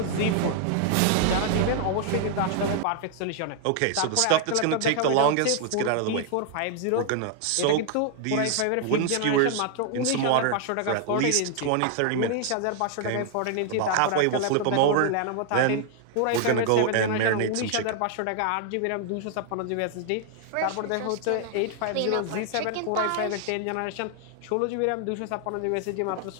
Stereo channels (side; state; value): both; different; correlation 0.00